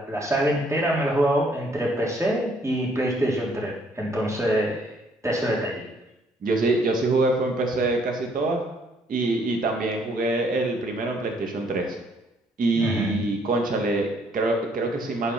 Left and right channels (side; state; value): both; normal; correlation 0.66